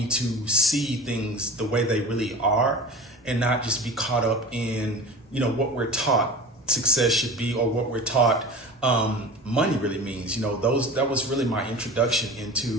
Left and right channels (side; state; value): both; normal; correlation 0.35